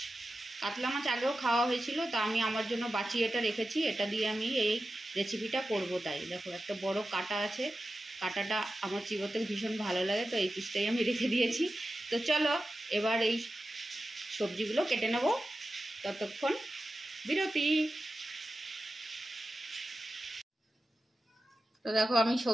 কাতলা মাছ আগেও খাওয়া হয়েছিল, তা আমি আমার জন্য বাঁচিয়ে এটা রেখেছি। এটা দিয়ে আমি এই রেসিপিটা করব। তাই দেখো, একটা বড় কাঁটা আছে। কাঁটাটা আমার চিবোতে ভীষণ ভালো লাগে, তো এই পিসটাই আমি রেখে দিয়েছি। তো চলো এবার এই সবজিগুলো কেটে নেব। ততক্ষণ বিরতি। তো দেখো, আমি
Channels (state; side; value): normal; both; correlation 0.93